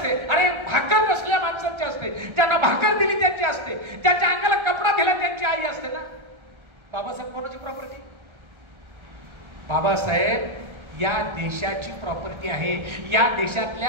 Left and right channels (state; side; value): late; left; 1.3 ms